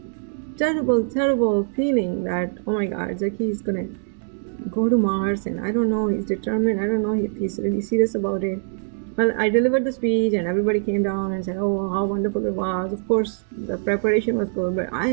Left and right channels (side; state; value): left; silent; digital silence